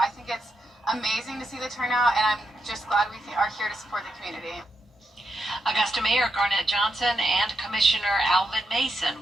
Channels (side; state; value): both; normal; correlation 0.84